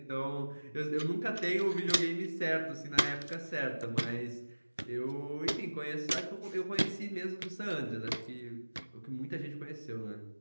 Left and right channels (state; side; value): inverted; both; correlation -1.00